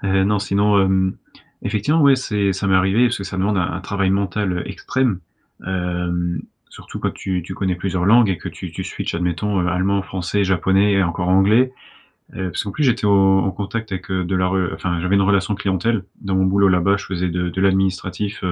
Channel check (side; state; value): both; identical; correlation 1.00